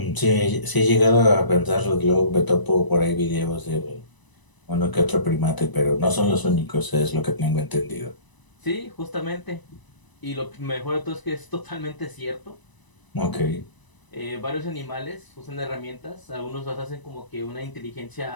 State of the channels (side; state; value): right; late; 1.0 ms